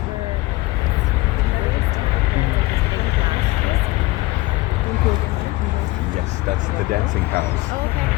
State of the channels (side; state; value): right; quieter; 20.0 dB